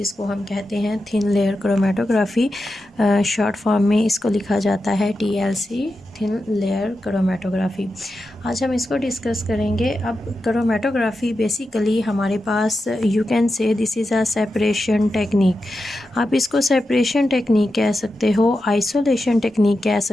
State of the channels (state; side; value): normal; both; correlation 0.90